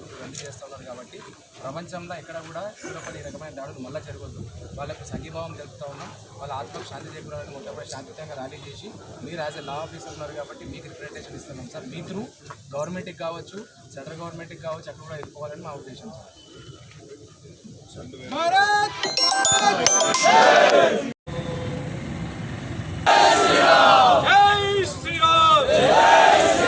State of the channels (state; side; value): identical; both; correlation 1.00